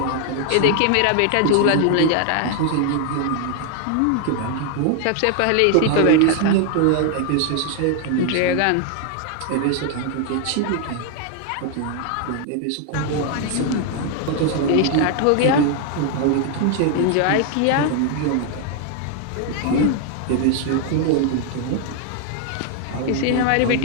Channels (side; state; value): both; different; correlation 0.00